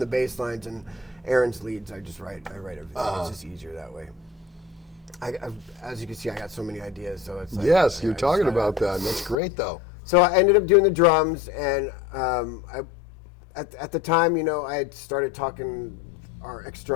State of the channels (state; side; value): drops out; right; at 9.3 s